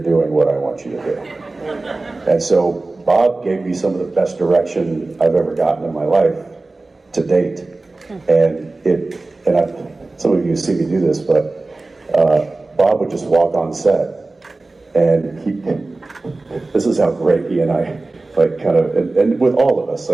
doing what I want you to do. And so Bob gave me some of the best direction I've ever gotten in my life to date. And some of you see me do this, but Bob would just walk on set, and this is how great he and I, like, kind of, and with all of us,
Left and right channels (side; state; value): left; quieter; 3.3 dB